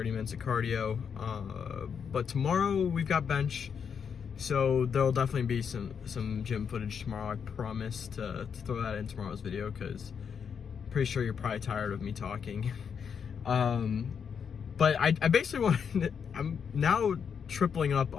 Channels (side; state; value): right; quieter; 6.9 dB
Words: minutes of cardio. But tomorrow we've got bench, so there'll definitely be some gym footage tomorrow. I promise to throw that in tomorrow's video, because I'm pretty sure you're probably tired of me talking. But I basically want I'm now tripling up